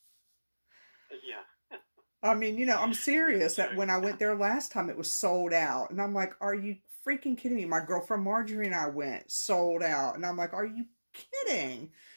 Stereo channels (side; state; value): both; inverted; correlation -1.00